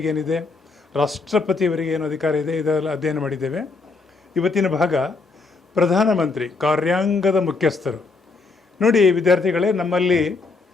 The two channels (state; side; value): quieter; right; 4.0 dB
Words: ಏನಿದೆ, ರಾಷ್ಟ್ರಪತಿಯವರಿಗೆ ಏನು ಅಧಿಕಾರ ಇದೆ, ಇದೆಲ್ಲ ಅಧ್ಯಯನ ಮಾಡಿದ್ದೇವೆ. ಇವತ್ತಿನ ಭಾಗ ಪ್ರಧಾನಮಂತ್ರಿ, ಕಾರ್ಯಾಂಗದ ಮುಖ್ಯಸ್ಥರು. ನೋಡಿ ವಿದ್ಯಾರ್ಥಿಗಳೇ, ನಮ್ಮಲ್ಲಿ